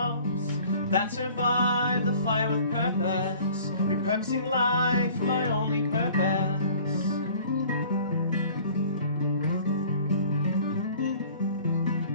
that survive the fire with purpose, repurposing life, my only purpose.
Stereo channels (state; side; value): inverted; both; correlation -0.50